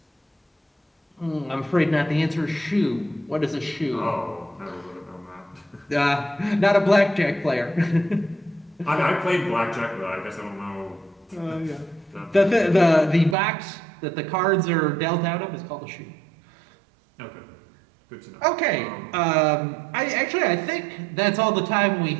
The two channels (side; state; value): left; drops out; at 13.4 s